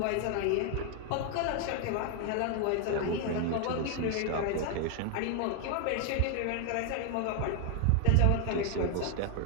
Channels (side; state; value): both; different; correlation 0.00